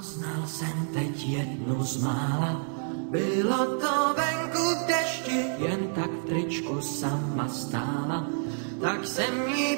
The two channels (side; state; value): left; silent; 59 dB below the other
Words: jsem teď jednu z mála, bylo to venku v dešti, jen tak v tričku sama stála. Tak jsem jí